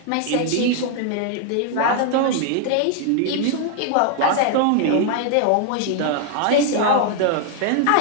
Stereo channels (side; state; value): both; different; correlation 0.00